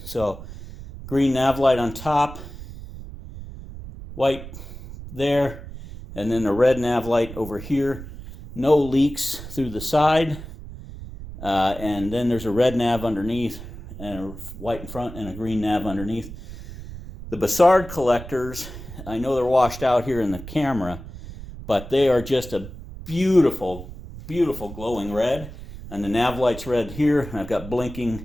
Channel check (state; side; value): noise; right; rumble, 13 dB below the sound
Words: So green nav light on top, white there, and then a red nav light over here. No leaks through the side, and then there's a red nav underneath and a white in front and a green nav underneath. The Bassard collectors, I know they're washed out here in the camera, but they are just a beautiful, beautiful glowing red. And the nav light's red here, and I've got